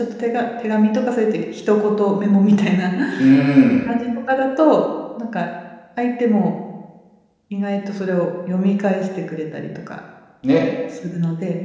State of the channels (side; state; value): both; identical; correlation 1.00